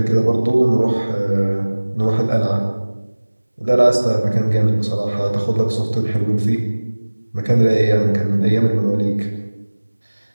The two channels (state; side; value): inverted; both; correlation -1.00